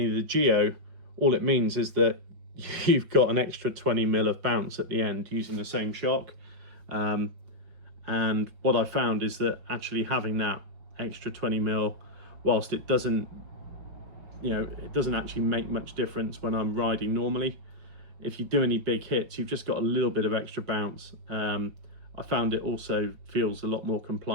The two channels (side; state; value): left; late; 5.4 ms